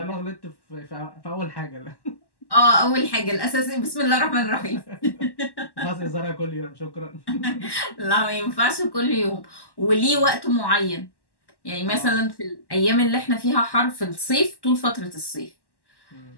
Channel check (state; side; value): late; right; 1.1 ms